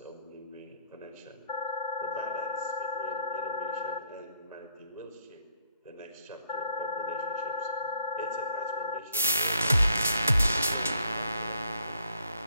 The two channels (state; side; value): inverted; both; correlation -0.69